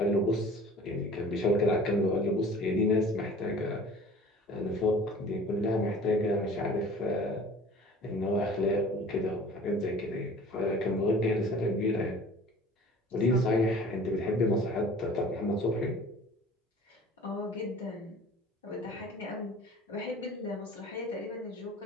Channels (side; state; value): both; normal; correlation 0.45